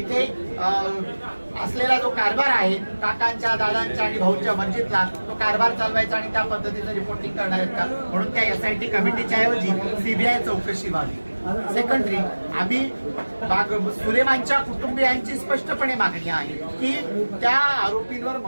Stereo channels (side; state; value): both; inverted; correlation -1.00